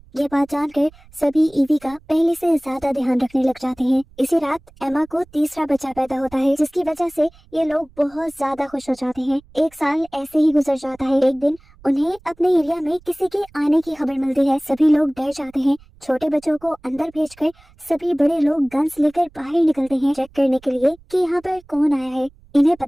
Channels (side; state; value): right; noise; rumble, 27 dB below the sound